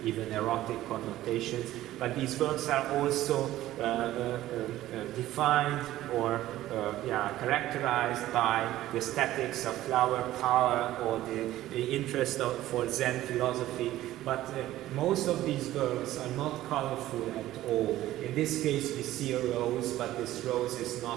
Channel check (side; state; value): left; quieter; 14.8 dB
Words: even erotic connotations. But these works are also defined or characterized by the aesthetics of flower power or the interest for Zen philosophy. But most of these works are not colorful at all. In this case, we see a rose, but this rose is